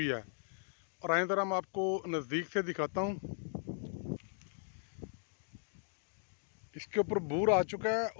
है। और आए ज़रा मैं आपको नज़दीक से दिखाता हूँ। इसके ऊपर बूर आ चुका है,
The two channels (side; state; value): right; silent; digital silence